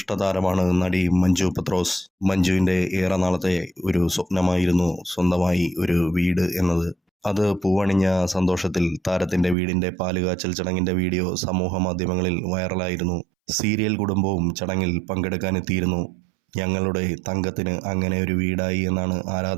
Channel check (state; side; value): drops out; left; at 9.6 s